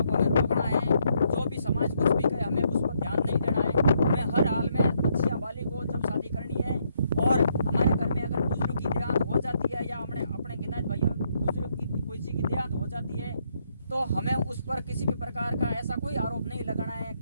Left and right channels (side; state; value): both; inverted; correlation -0.74